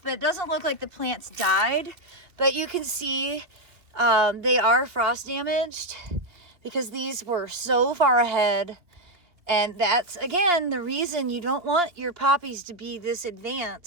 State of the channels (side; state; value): left; late; 2.4 ms